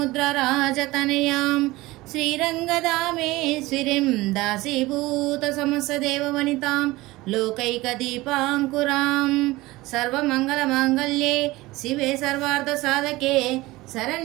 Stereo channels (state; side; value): quieter; left; 19.7 dB